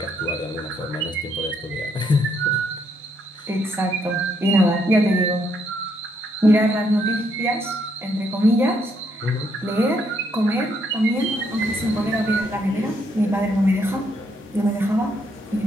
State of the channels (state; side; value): normal; both; correlation 0.73